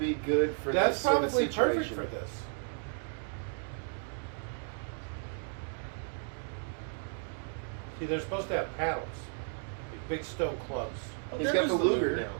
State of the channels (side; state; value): left; silent; 55 dB below the other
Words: good for That's this sort of probably situation. perfect for this. See, they're supposed to have paddles. Like big stone clubs. Oh, He's there got was the Luger now.